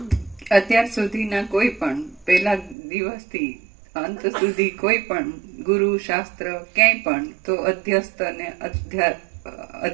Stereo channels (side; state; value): left; drops out; at 2.8 s